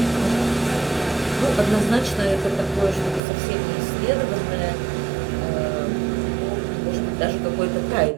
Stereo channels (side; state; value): left; drops out; at 3.2 s